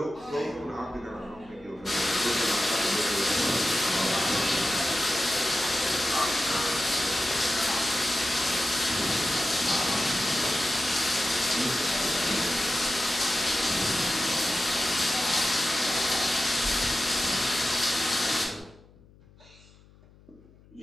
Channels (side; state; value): left; noise; hum, 26 dB below the sound